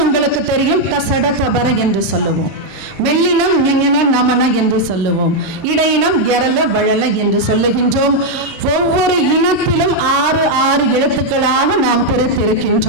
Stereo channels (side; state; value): both; normal; correlation 0.00